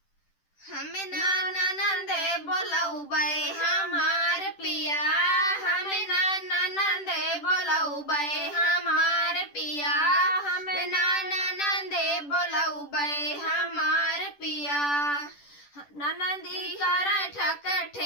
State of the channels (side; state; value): right; late; 10 ms